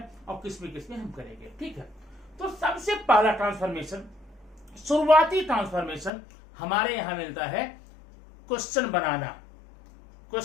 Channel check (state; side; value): drops out; right; at 6.1 s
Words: और किसमें हम करेंगे। ठीक है, तो सबसे पहला ट्रांसफॉर्मेशन, शुरुआती ट्रांसफॉर्मेशन हमारे यहां मिलता है क्वेश्चन